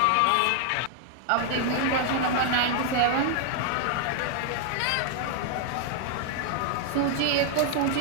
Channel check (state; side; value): different; both; correlation 0.00